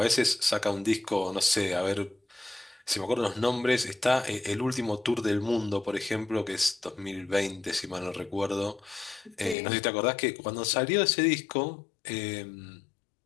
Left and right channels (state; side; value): drops out; right; at 9.6 s